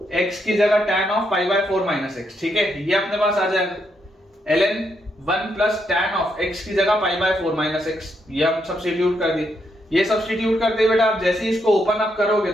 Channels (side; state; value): both; normal; correlation 0.78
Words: x की जगह tan of pi by 4 minus x. ठीक है, ये अपने पास आ जाएगा ln 1 plus tan of x की जगह पाई बाय 4 माइनस एक्स। ये हम सब्स्टिट्यूट कर दिए। ये सब्स्टिट्यूट करते बेटा आप जैसे ही इसको ओपन अप करोगे